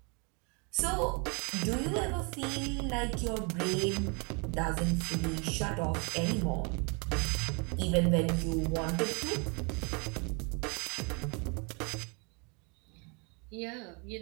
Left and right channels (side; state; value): left; quieter; 33.2 dB